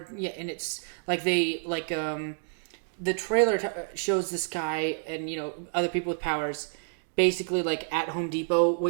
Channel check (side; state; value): left; silent; digital silence